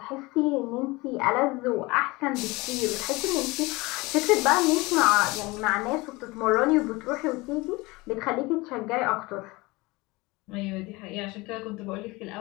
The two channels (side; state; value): right; quieter; 23.0 dB